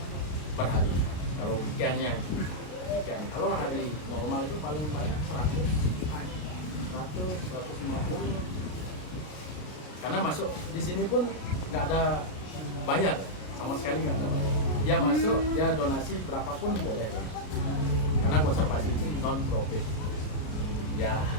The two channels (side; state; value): right; late; 33 ms